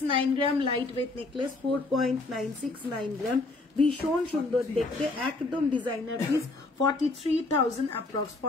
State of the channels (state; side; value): quieter; right; 3.2 dB